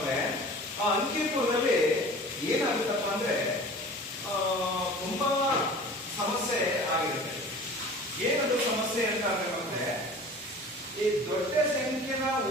ಆ ಅಂಕಿಪುರದಲ್ಲಿ ಏನಾಗುತ್ತಪ್ಪ ಅಂದ್ರೆ ತುಂಬಾ ಸಮಸ್ಯೆ ಆಗಿರುತ್ತೆ. ಏನದು ಸಮಸ್ಯೆ ಅಂತ ಅಂದ್ರೆ ಈ ದೊಡ್ಡ ಸಂಖ್ಯೆನ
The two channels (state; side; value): normal; both; correlation 0.42